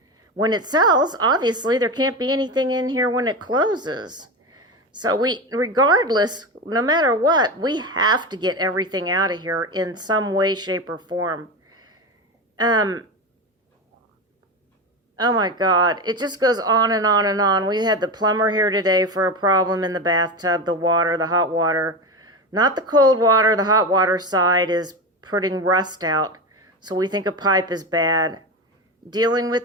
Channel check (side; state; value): both; normal; correlation 0.20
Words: when it sells, obviously there can't be anything in here when it closes. So regardless, no matter what, we have to get everything out of here in some way, shape, or form. Oh my God, it just goes on and on and on. We had the plumber here today for a problem in the bathtub, the water, the hot water. Not the cold water, the hot water side is putting rust out. So we think a pipe is bad. Dealing